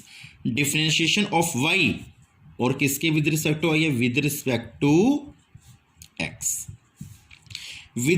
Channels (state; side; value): identical; both; correlation 1.00